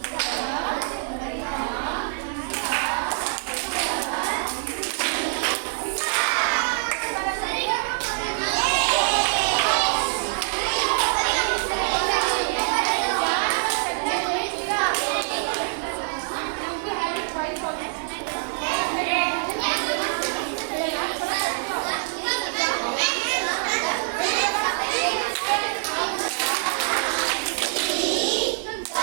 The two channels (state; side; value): silent; left; 62 dB below the other